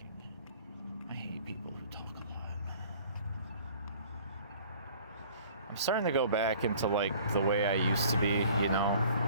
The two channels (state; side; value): inverted; both; correlation -0.51